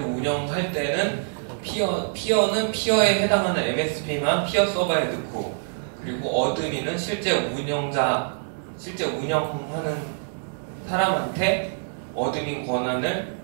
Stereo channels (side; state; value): left; silent; digital silence